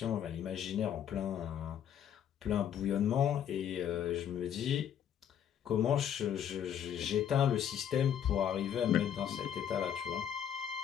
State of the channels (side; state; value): right; quieter; 9.2 dB